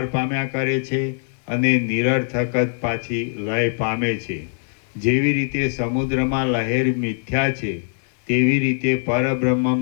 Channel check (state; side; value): silent; right; 64 dB below the other